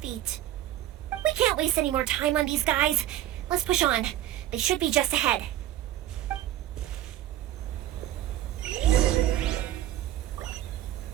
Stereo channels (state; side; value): quieter; left; 13.0 dB